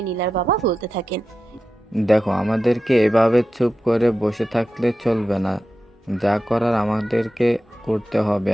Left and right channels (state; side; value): normal; both; correlation 0.91